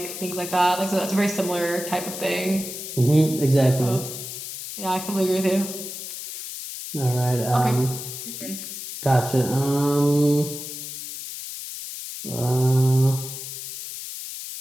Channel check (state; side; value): noise; left; hiss, 9 dB below the sound